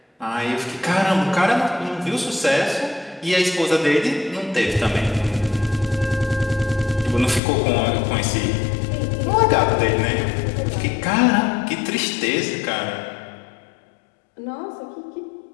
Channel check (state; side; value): drops out; right; at 7.4 s